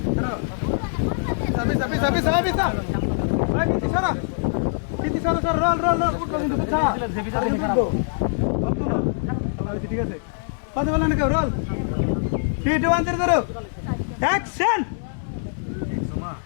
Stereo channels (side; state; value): right; silent; 63 dB below the other